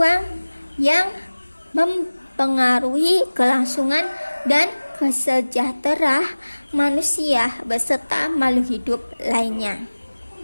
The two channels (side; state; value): both; inverted; correlation -1.00